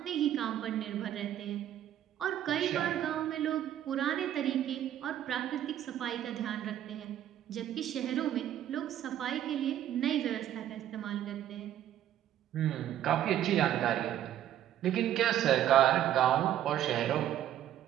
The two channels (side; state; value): left; quieter; 11.5 dB